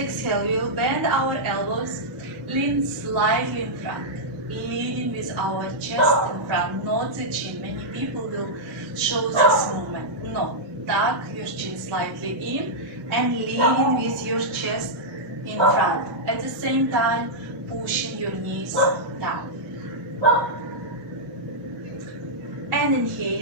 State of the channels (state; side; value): normal; both; correlation -0.09